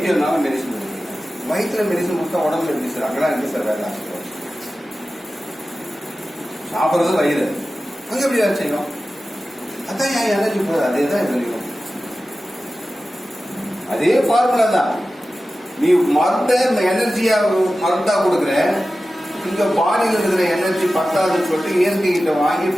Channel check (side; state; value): both; normal; correlation 0.95